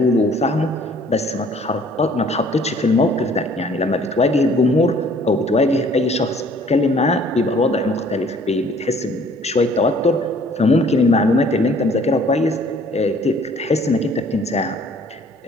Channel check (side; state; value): both; normal; correlation 0.56